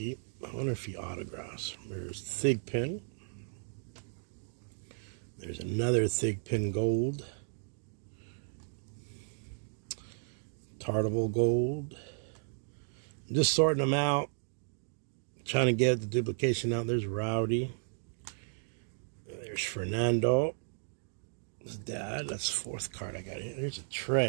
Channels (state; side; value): silent; left; digital silence